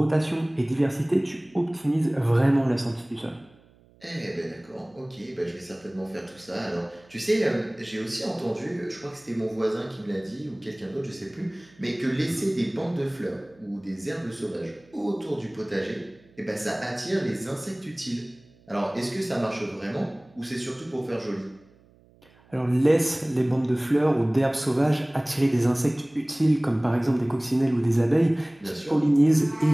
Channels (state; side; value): noise; right; hum, 29 dB below the sound